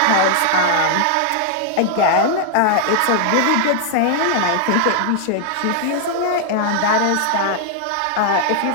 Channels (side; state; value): both; different; correlation 0.00